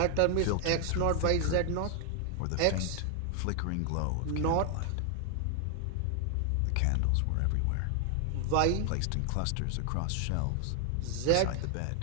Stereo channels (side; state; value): both; different; correlation 0.00